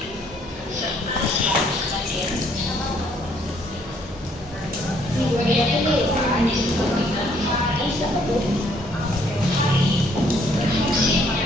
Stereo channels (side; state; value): both; normal; correlation 0.65